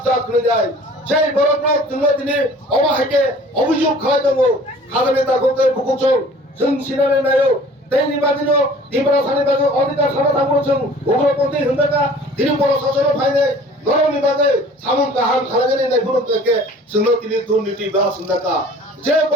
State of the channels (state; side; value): normal; both; correlation 0.48